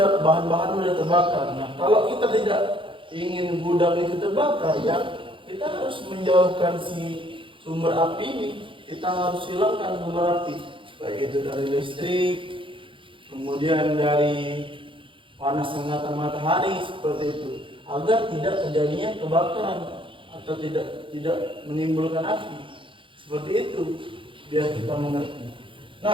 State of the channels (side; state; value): left; late; 0.25 ms